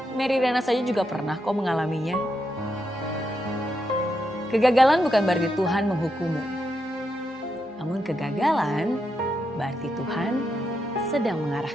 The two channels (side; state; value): both; normal; correlation 0.83